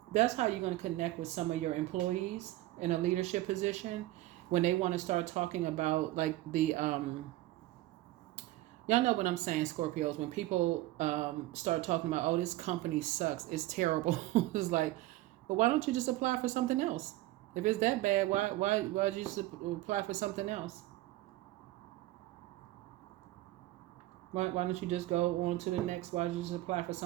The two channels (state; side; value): quieter; left; 16.9 dB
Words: that's how you're going to connect with some of your employees in a leadership position when they want to start talking about like the y'all know what I'm saying, Scorpios, when people start talking about, oh, this company sucks, it's terrible. It's like, but why don't you just apply for something else? If it's that bad, why'd you just apply for something else? Why don't you just go on to the next? Why don't you just apply for